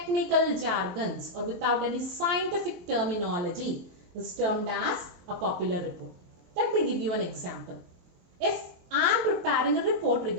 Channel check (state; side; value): late; left; 23 ms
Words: jargons or without any scientific terminology is termed as a popular report. Let me give you an example. If I am preparing a report